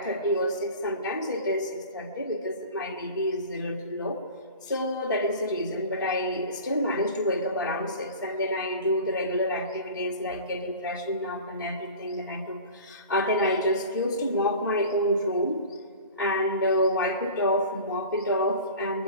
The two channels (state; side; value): inverted; both; correlation -0.38